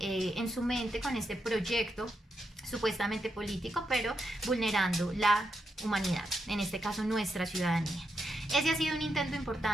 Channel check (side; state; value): both; normal; correlation 0.83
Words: su mente con este proyecto supuestamente político, pero vulnerando la humanidad, en este caso nuestra ciudadanía. Ese ha sido un intento